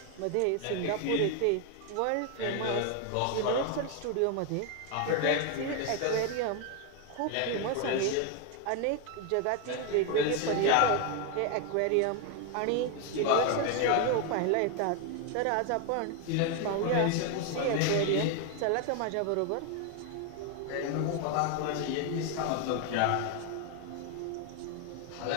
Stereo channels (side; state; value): both; different; correlation 0.01